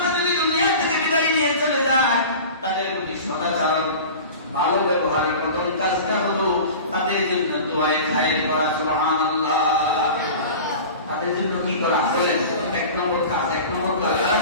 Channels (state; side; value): inverted; both; correlation -0.36